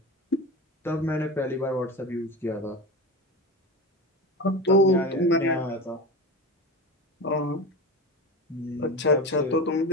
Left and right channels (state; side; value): normal; both; correlation 0.25